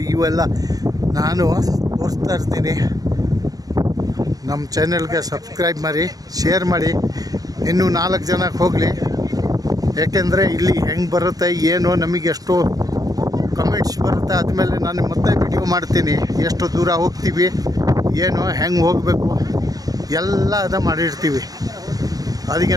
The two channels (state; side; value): late; left; 0.18 ms